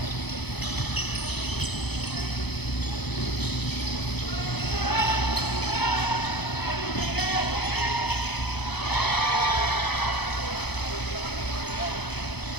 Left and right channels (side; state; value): right; late; 0.98 ms